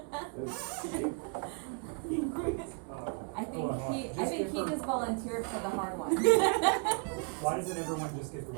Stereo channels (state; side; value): quieter; left; 35.1 dB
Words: I think he just volunteered for the hard one. Why doesn't everyone just get the